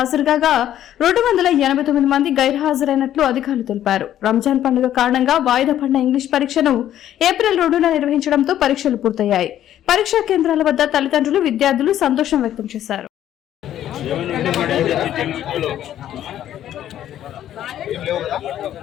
కాగా 289 మంది గైర్హాజరైనట్లు అధికారులు తెలిపారు. రంజాన్ పండుగ కారణంగా వాయిదా పడిన ఇంగ్లీష్ పరీక్షను ఏప్రిల్ 2న నిర్వహించడంతో పరీక్షలు పూర్తయ్యాయి. పరీక్షా కేంద్రాల వద్ద తల్లిదండ్రులు, విద్యార్థులు సంతోషం వ్యక్తం చేశారు.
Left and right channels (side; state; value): right; quieter; 11.6 dB